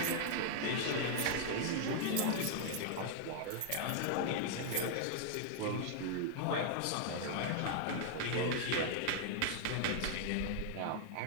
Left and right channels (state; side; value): different; both; correlation -0.01